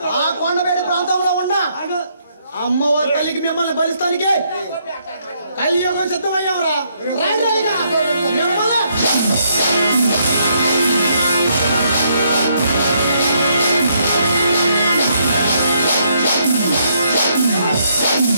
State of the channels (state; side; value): inverted; both; correlation -0.72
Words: ఆ కొండవేడి ప్రాంతంలో ఉన్న అమ్మవారి తల్లికి మిమ్మల్ని బలిస్తానికి కలియుగం సిద్ధమయ్యావురా.